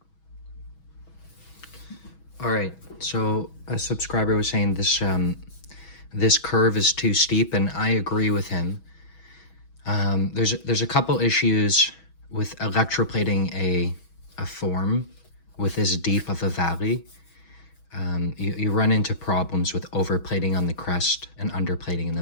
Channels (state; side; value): late; right; 6.2 ms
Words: All right, so a subscriber was saying this curve is too steep, and I agree with him. There's a couple issues with electroplating a form with this deep of a valley. You run into problems with overplating on the crest and underplating in